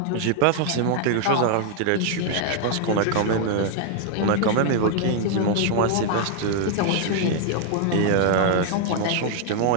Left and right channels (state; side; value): different; both; correlation 0.00